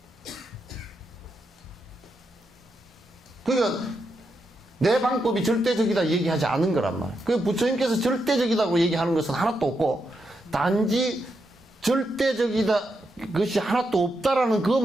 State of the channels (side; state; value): both; normal; correlation 0.83